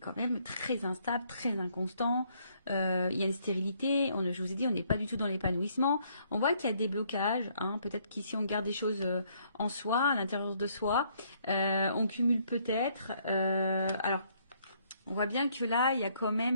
même très instable, très inconstant. Il y a une stérilité. Je vous ai dit, on n'est pas du tout dans l'épanouissement. On voit qu'il y a des blocages. Hein, peut-être qu'ici, on garde des choses en soi, à l'intérieur de soi. On cumule peut-être. Alors, on voit bien que là, il y a quand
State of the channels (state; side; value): inverted; both; correlation -0.68